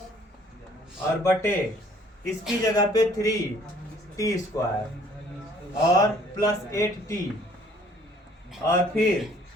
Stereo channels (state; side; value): normal; both; correlation 0.58